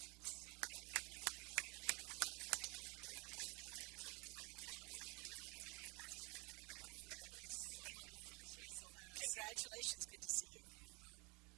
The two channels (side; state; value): left; quieter; 29.2 dB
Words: Congratulations, good to see you.